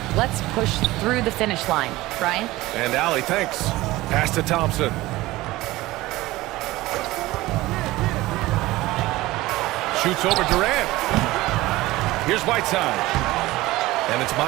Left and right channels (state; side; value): quieter; left; 18.5 dB